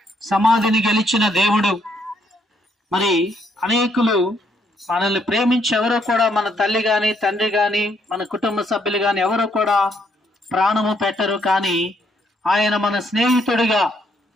సమాధిని గెలిచిన దేవుడు, మరి అనేకులు మనల్ని ప్రేమించి ఎవరో కూడా, మన తల్లి గాని తండ్రి గాని మన కుటుంబ సభ్యులు గాని ఎవరో కూడా ప్రాణము పెట్టరు. కానీ ఆయన మన స్నేహితుడిగా,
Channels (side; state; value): both; normal; correlation 0.72